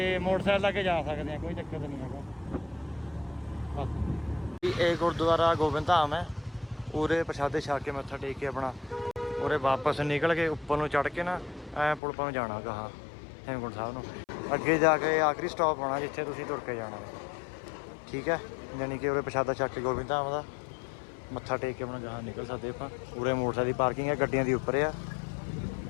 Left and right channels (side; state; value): right; drops out; at 12.0 s